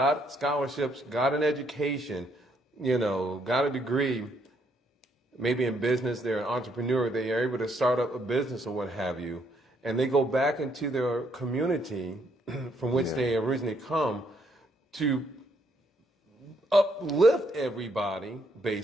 scholarships, got an education, got a degree, maybe in business, they're an entrepreneur, they are able to start up a business or what have you, and they go back into their community from which they originally come to uplift everybody,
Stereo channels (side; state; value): both; normal; correlation 0.71